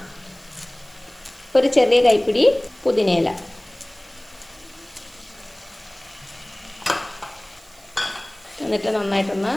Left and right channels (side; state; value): right; noise; hiss, 26 dB below the sound